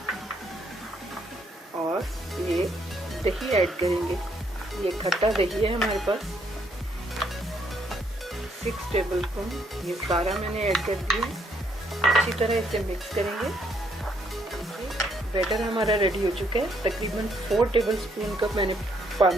और ये दही ऐड करेंगे। ये खट्टा दही है हमारे पास, 6 टेबल स्पून। ये सारा मैंने ऐड कर दिया। अच्छी तरह इसे मिक्स करेंगे। बैटर हमारा रेडी हो चुका है। तकरीबन 4 टेबल स्पून का मैंने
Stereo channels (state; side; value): normal; both; correlation 0.71